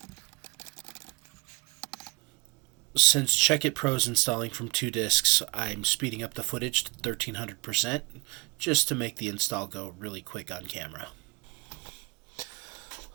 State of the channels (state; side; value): quieter; left; 26.9 dB